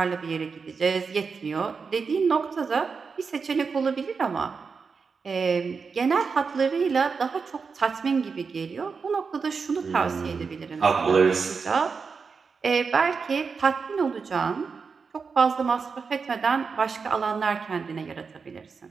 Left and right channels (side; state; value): left; quieter; 5.2 dB